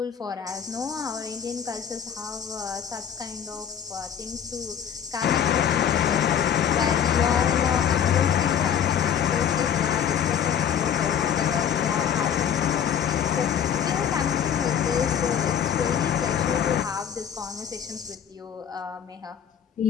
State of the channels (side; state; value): right; quieter; 8.6 dB